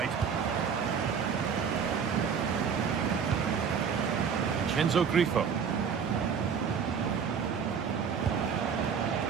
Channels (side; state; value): left; quieter; 6.7 dB